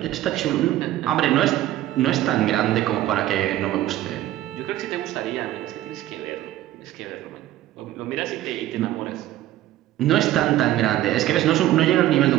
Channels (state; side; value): quieter; left; 14.1 dB